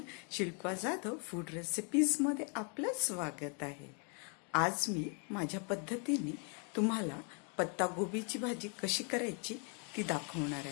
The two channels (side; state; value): right; quieter; 38.5 dB